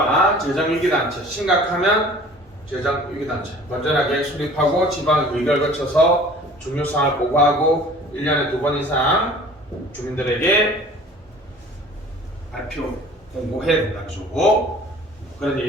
재정위기단체, 심각하면 재정위기단체, 건전하게 수립하고 지방 의결 거쳐서 중요사항을 보고하고 1년에 2번 이상 주민들에게 발표, 공고해야 된다는 거죠. 그런데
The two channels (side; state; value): both; normal; correlation 0.47